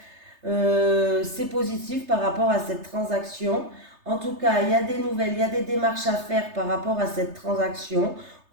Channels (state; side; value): late; left; 3.3 ms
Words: C'est positif par rapport à cette transaction. En tout cas, il y a des nouvelles, il y a des démarches à faire par rapport à cette transaction.